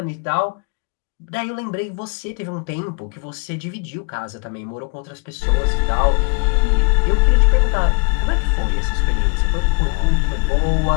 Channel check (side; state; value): right; quieter; 35.4 dB